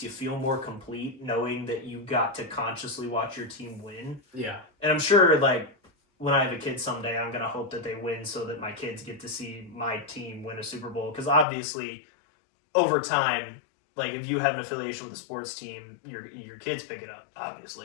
you feel more complete knowing that you got to consciously watch your team win. Yeah. And I'm sure, when I have a kid someday, I'm going to hope that they win so that my kids get to see my team win a Super Bowl. Because obviously, over time, if you have an affiliation with a sports team, your kids pick it up,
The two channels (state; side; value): drops out; right; at 11.5 s